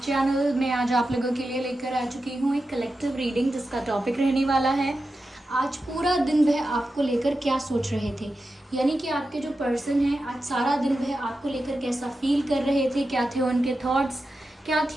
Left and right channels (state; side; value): normal; both; correlation 0.91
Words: मैं आज आप लोगों के लिए लेकर आ चुकी हूँ एक कलेक्टिव रीडिंग जिसका टॉपिक रहने वाला है आज पूरा दिन वह आपको लेकर क्या सोच रहे थे। यानी कि आपके जो पर्सन हैं आज सारा दिन वह आपको लेकर कैसा फील कर रहे थे, क्या थे उनके थॉट्स, क्या